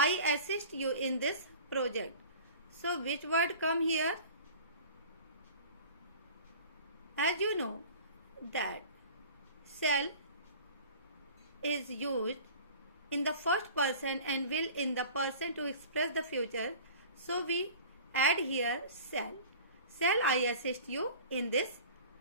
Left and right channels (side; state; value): both; inverted; correlation -0.42